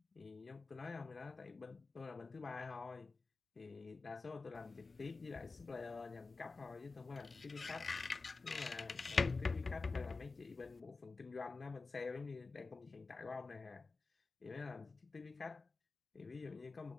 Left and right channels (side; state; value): right; quieter; 4.0 dB